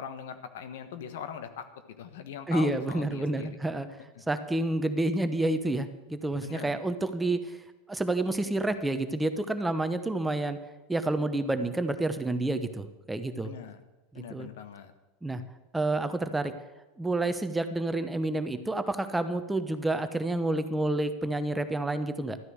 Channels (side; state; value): both; normal; correlation 0.80